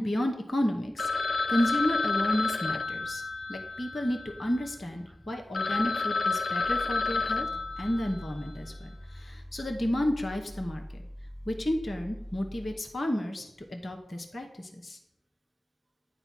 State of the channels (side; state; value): both; normal; correlation 0.95